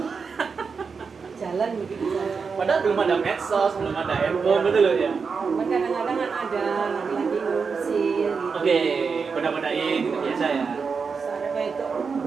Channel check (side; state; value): left; quieter; 5.4 dB